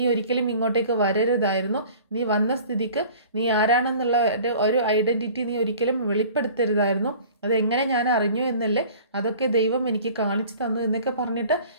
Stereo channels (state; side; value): inverted; both; correlation -0.46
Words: ഒരിക്കലും ഇങ്ങോട്ടേക്ക് വരരുതായിരുന്നു. നീ വന്ന സ്ഥിതിക്ക് നീ ആരാണെന്നുള്ള ഒരു ഐഡന്റിറ്റി നീ ഒരിക്കലും വെളിപ്പെടുത്തരുതായിരുന്നു. അതെങ്ങനെ ഞാൻ അറിഞ്ഞു എന്നല്ലേ, അതൊക്കെ ദൈവം എനിക്ക് കാണിച്ചു തന്നു എന്നൊക്കെ പറഞ്ഞിട്ട്